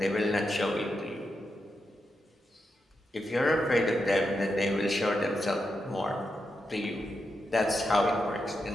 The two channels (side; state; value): both; normal; correlation 0.86